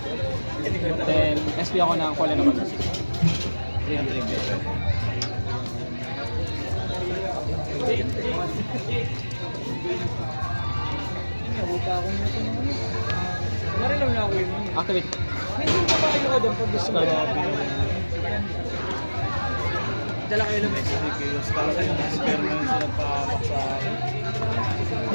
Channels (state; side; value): inverted; both; correlation -1.00